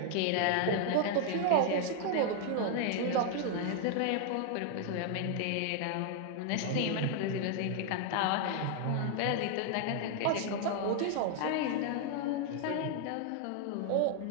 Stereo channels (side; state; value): both; different; correlation 0.00